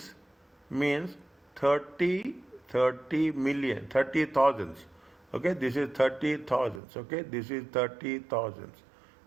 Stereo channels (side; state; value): left; drops out; at 6.8 s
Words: means 30 30 million 30 thousands. Okay, this is 30 thousands. Okay, this is 30 thousands